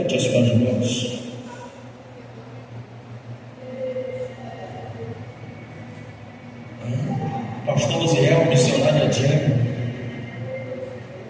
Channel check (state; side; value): identical; both; correlation 1.00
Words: as suas mãos. Pastor Luziel, missionária Diana.